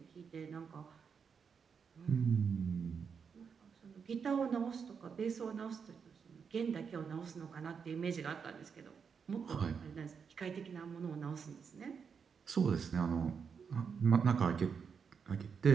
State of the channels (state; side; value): quieter; left; 6.3 dB